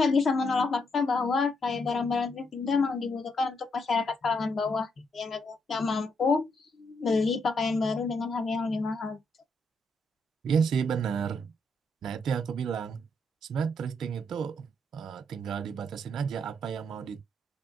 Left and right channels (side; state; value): both; normal; correlation 0.76